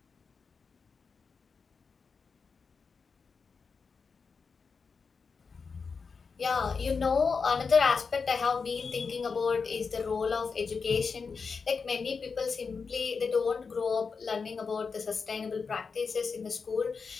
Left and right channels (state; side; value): quieter; right; 5.2 dB